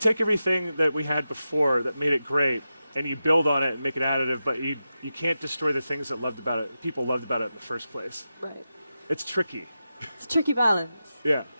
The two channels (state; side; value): inverted; both; correlation -0.91